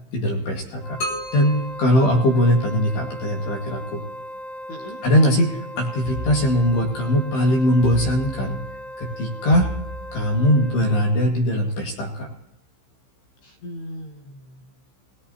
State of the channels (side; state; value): right; late; 15 ms